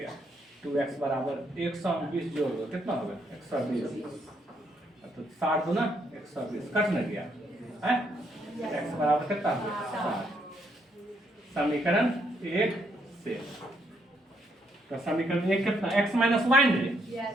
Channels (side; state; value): both; normal; correlation 0.74